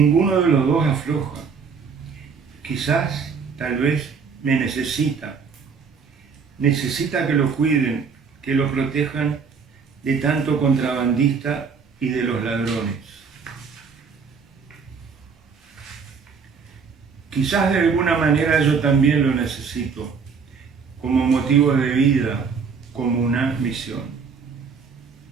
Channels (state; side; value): quieter; left; 5.7 dB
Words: de los dos afloja. Quizás, tal vez, me necesita. Necesita que lo cuiden, que lo protejan de tanto contrabandista y de los ladrones. Quizás de alguna manera yo también lo necesito, como motivo de vida, como una misión.